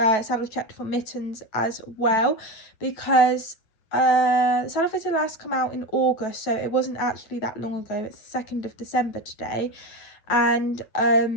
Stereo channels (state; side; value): late; right; 9.1 ms